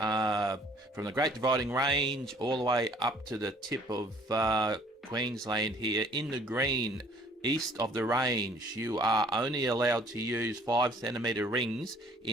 the Great Dividing Range all the way up to the tip of Queensland here in the green east of the range, you are only allowed to use 5 centimeter rings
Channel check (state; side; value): normal; both; correlation 0.57